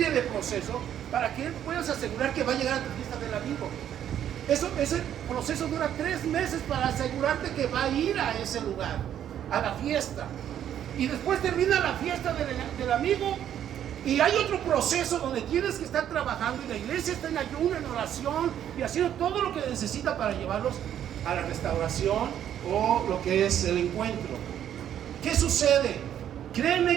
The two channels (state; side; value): quieter; left; 10.3 dB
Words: de procesos para que puedas asegurar que va a llegar a tu fiesta del amigo. Ese proceso dura 3 meses para asegurarte que va a ir a ese lugar, a la fiesta. Y después termina la fiesta del amigo. Y hay otro proceso donde tienes que estar trabajando y la iglesia está en ayuno, en oración y haciendo todo lo que necesita para llevarlos a la restauración o lo que es el encuentro. ¿Qué sucede?